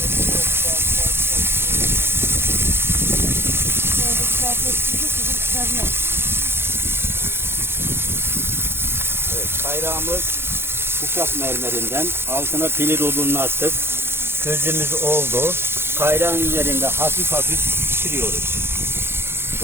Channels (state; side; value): late; left; 0.11 ms